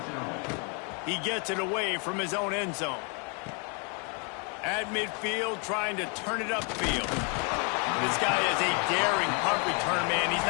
He gets it away from his own end zone. At midfield, trying to turn it upfield. This guy is a daring punt return man. He's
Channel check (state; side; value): quieter; right; 36.6 dB